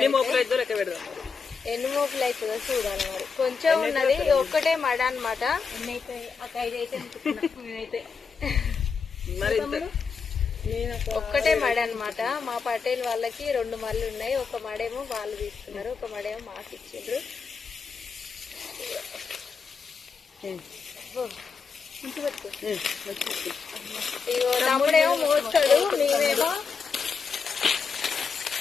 మోపులు అవుతుందో చూడాలి. మరి కొంచెం ఉన్నది, ఒక్కటే మడ అనమాట. ఒక్కటే మడ అనమాట. మా పటేల్ వాళ్ళకి 2 మళ్ళు ఉన్నాయి. ఒక మడేమో వాళ్ళు తీసుకున్నారు, ఒక మడేమో మాకు ఇచ్చిండ్రు. తమ్ముడేమో మోస్తాడు,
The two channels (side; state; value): right; quieter; 5.5 dB